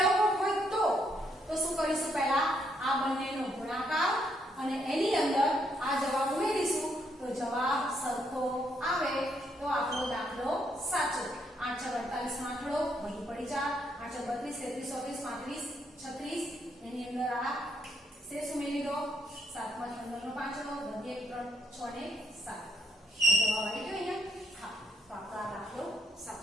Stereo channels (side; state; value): both; normal; correlation 0.74